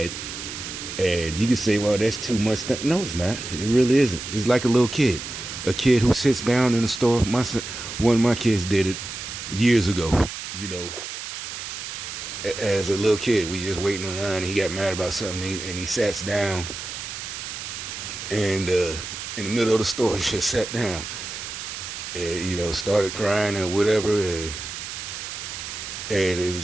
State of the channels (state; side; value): noise; right; hiss, 8 dB below the sound